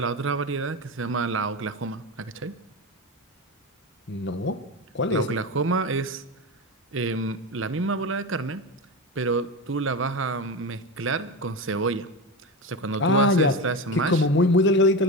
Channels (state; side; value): normal; both; correlation 0.21